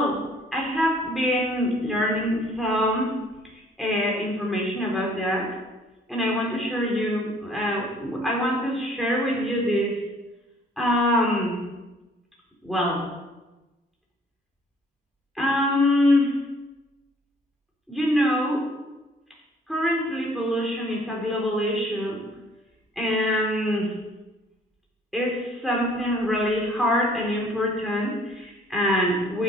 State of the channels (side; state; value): both; normal; correlation 0.58